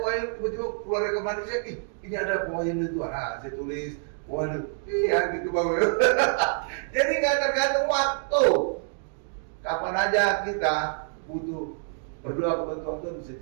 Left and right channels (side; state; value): left; silent; digital silence